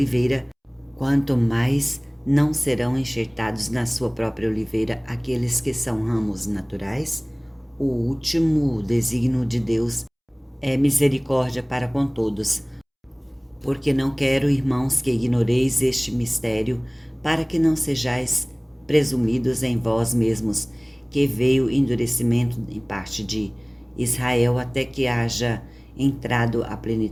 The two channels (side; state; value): both; identical; correlation 1.00